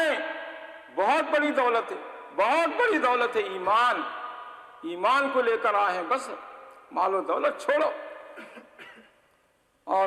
بہت بڑی دولت ہے، بہت بڑی دولت ہے ایمان، ایمان کو لے کر آئے ہیں، بس مال و دولت چھوڑو۔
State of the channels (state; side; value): identical; both; correlation 1.00